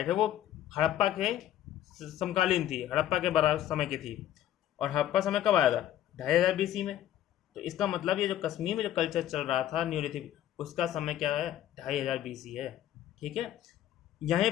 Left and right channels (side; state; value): right; quieter; 12.0 dB